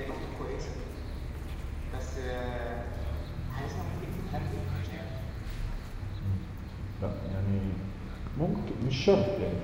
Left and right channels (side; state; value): both; identical; correlation 1.00